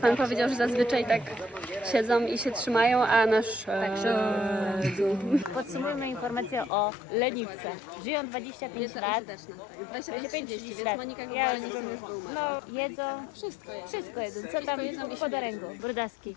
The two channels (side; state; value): right; drops out; at 6.7 s